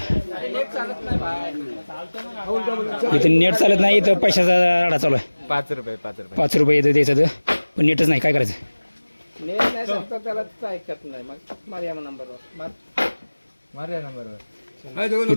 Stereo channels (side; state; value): both; inverted; correlation -1.00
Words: इथं नेट चालत नाही, इथं पैशाचा राडा चालू आहे. 5 रुपये 5 रुपये इथं द्यायचं तर, पण नेटच नाही, काय करायचं. नेट नाही सांगतो त्याला ऐकत नाही. मग मार्या नंबरवर